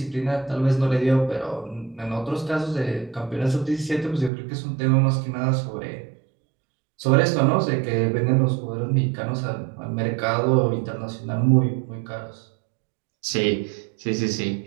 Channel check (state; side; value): drops out; left; at 4.3 s